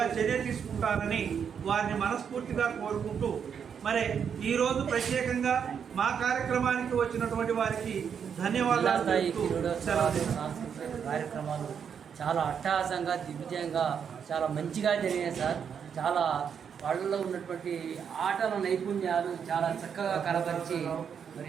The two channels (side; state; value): left; quieter; 7.4 dB